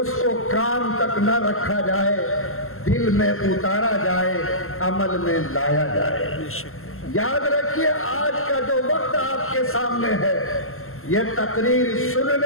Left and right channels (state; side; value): late; right; 0.62 ms